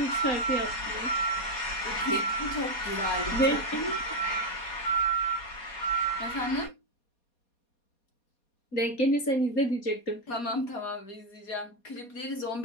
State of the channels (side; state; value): right; late; 4.2 ms